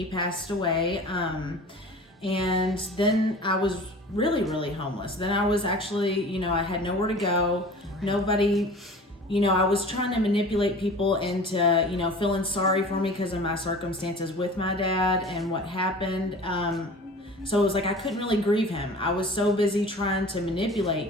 passed away. And then I was really, really homeless. Then I was actually, I had nowhere to go. Nobody, I was trying to manipulate people into, feeling sorry for me because of my circumstances with my dad and what happened. So it was like I couldn't really grieve him. I was so busy trying to manipulate,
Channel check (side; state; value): both; normal; correlation 0.41